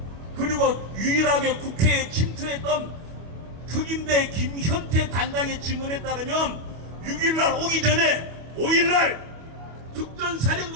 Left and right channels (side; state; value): left; late; 25 ms